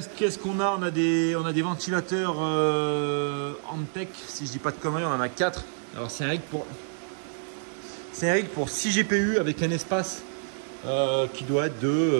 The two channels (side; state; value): left; silent; digital silence